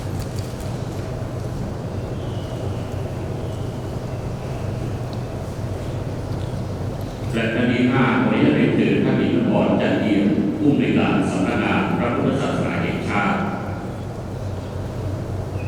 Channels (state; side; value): identical; both; correlation 1.00